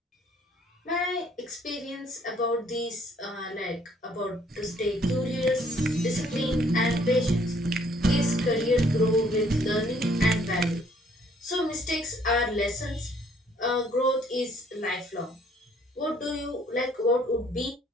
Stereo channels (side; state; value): both; normal; correlation 0.63